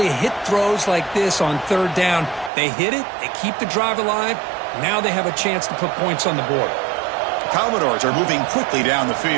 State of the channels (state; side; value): drops out; left; at 2.5 s